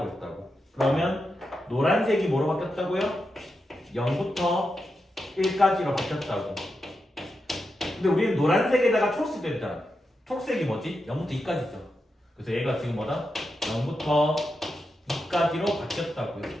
했다고. 그러면 노란색이 뭐로 바뀌었다고요? 0부터 1까지로 바뀌었다고. 근데 우리는 노란색에다가 초록색도 했잖아. 초록색이 뭐지? 0부터 2까지죠. 그래서 얘가 지금 뭐다? 0부터 2까지로 바뀌었다고요.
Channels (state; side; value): normal; both; correlation 0.87